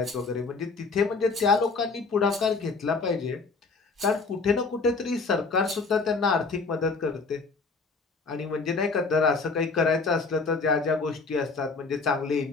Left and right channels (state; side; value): quieter; right; 4.2 dB